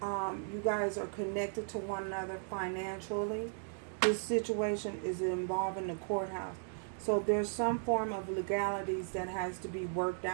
you guys are connected to one another financially. This situation is involving the courthouse. So there's some form of legalities that has to be worked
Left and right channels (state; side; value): silent; left; digital silence